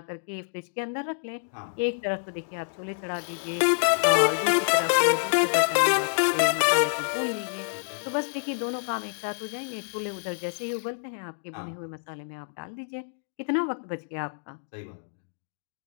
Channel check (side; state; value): right; silent; digital silence